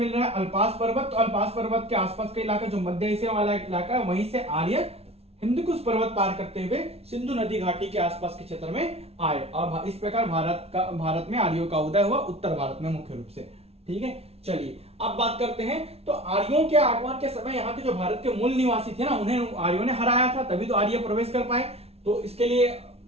रहा है अल्पास पर्वत। तो अल्पास पर्वत के आसपास का इलाका जो मध्य एशिया वाला इलाका है, वहीं से आर्य हिंदकुश पर्वत पार करते हुए सिंधु नदी घाटी के आसपास के क्षेत्र में आए और इस प्रकार भारत में आर्यों का उदय हुआ, उत्तर भारत में मुख्य रूप से। ठीक है, चलिए अब बात करते हैं। तो आर्यों के आगमन के समय यहाँ के जो भारत के मूल निवासी थे ना, उन्हें आर्यों ने हराया था, तभी तो आर्य प्रवेश कर पाए। तो इसके लिए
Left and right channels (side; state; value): left; late; 0.30 ms